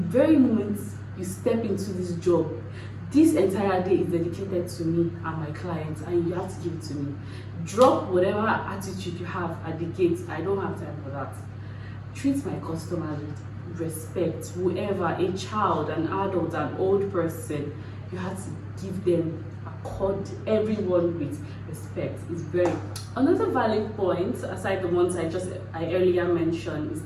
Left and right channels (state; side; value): identical; both; correlation 1.00